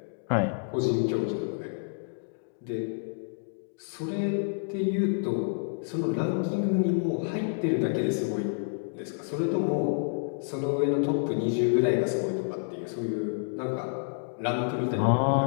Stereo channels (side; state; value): right; silent; digital silence